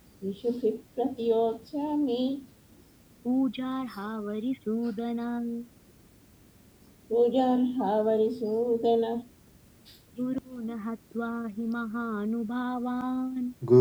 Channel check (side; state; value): both; identical; correlation 1.00